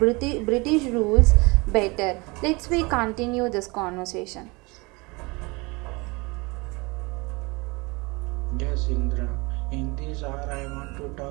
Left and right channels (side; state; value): left; quieter; 26.0 dB